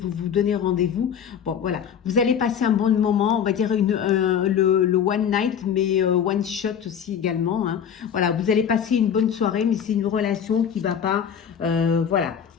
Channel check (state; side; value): quieter; right; 8.1 dB